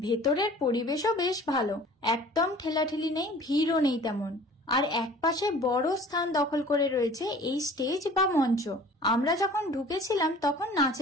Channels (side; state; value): both; normal; correlation 0.47